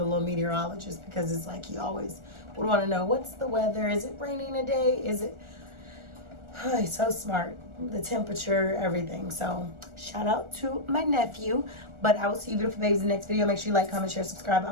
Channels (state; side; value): late; left; 1.4 ms